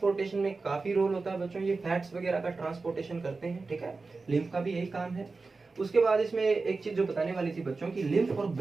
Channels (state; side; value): quieter; left; 3.9 dB